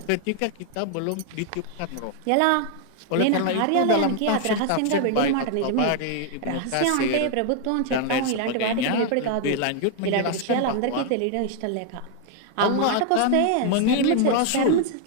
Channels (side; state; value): both; different; correlation 0.00